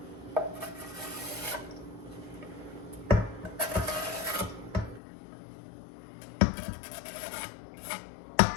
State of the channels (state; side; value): drops out; right; at 5.0 s